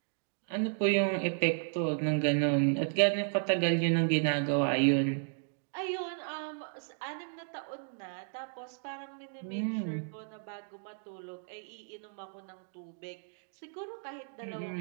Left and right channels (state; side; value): silent; left; digital silence